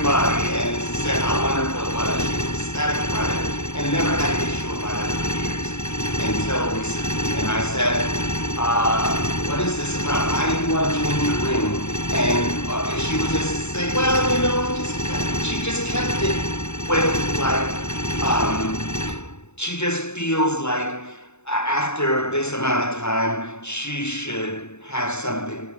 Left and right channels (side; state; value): right; late; 0.81 ms